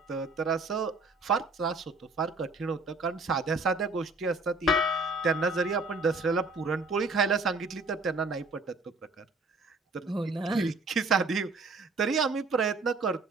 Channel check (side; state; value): left; quieter; 3.3 dB